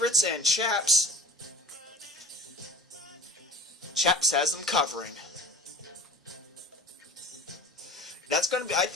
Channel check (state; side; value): normal; both; correlation 0.41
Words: and Chaps has them covering. That's going to be,